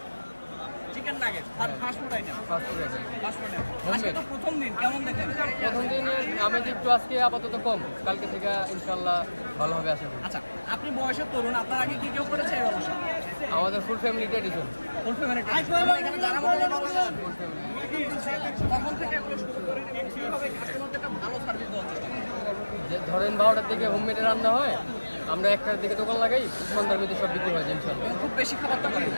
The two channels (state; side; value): inverted; both; correlation -1.00